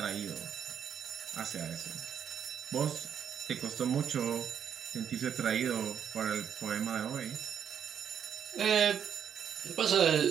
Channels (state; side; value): quieter; left; 8.4 dB